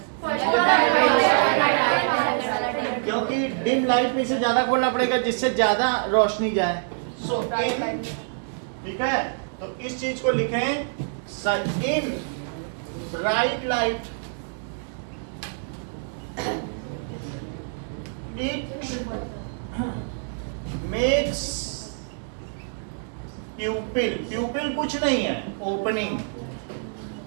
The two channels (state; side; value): silent; left; digital silence